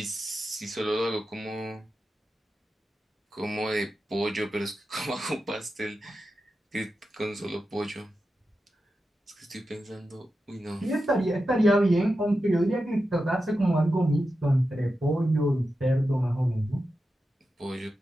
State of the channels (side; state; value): both; normal; correlation 0.91